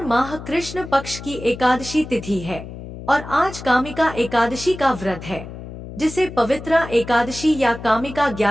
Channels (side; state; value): left; noise; hum, 12 dB below the sound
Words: माह कृष्ण पक्ष की एकादशी तिथि है और आज कामिका एकादशी का व्रत है, जिसे पवित्रा एकादशी या कामिका